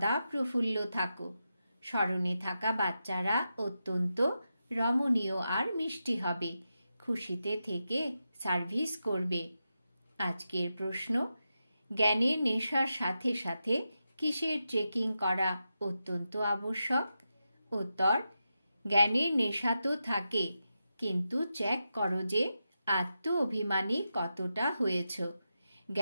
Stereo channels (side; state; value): both; inverted; correlation -0.88